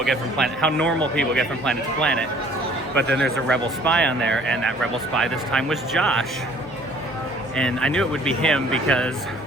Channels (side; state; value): right; noise; hum, 28 dB below the sound